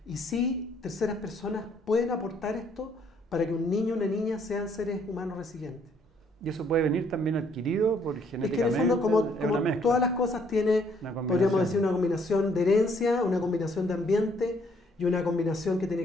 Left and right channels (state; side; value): normal; both; correlation 0.66